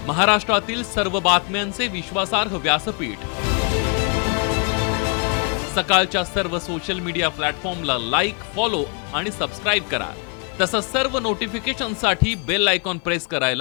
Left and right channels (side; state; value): right; quieter; 37.3 dB